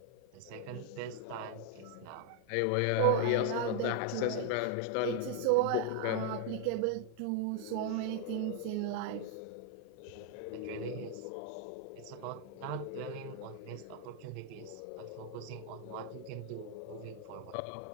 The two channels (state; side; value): different; both; correlation 0.00